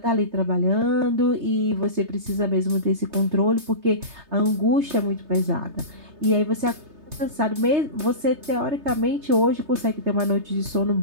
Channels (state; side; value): late; left; 3.3 ms